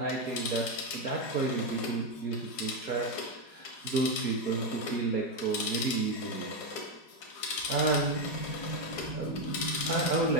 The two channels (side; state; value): right; late; 4.8 ms